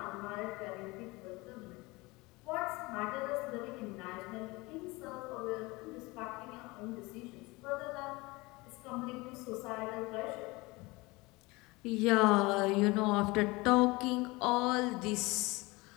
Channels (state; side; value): quieter; right; 23.3 dB